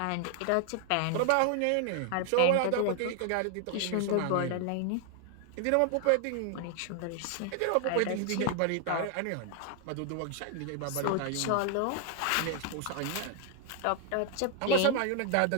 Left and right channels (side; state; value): both; different; correlation 0.00